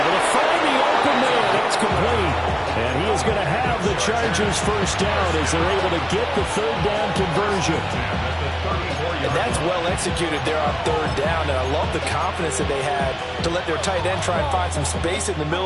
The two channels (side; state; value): both; identical; correlation 1.00